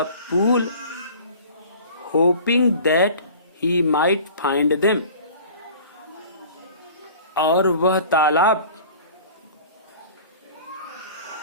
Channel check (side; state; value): both; inverted; correlation -0.44